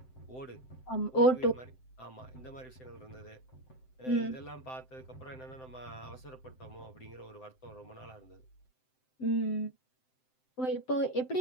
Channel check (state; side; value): late; right; 7.8 ms